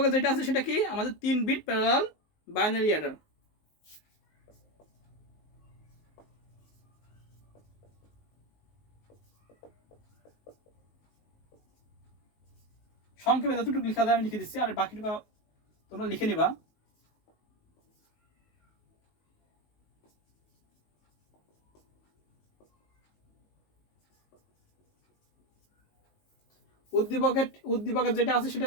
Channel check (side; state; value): right; late; 19 ms